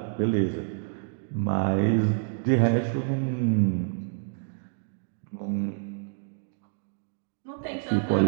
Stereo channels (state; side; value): silent; left; digital silence